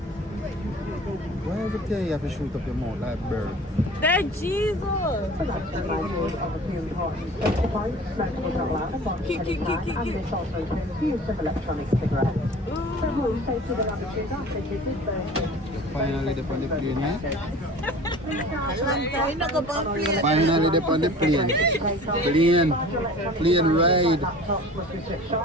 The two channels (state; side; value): normal; both; correlation 0.42